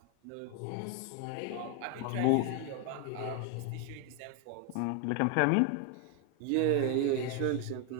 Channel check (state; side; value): different; both; correlation 0.01